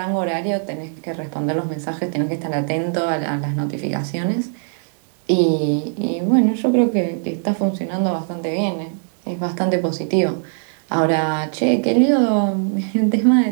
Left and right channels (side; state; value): left; silent; 60 dB below the other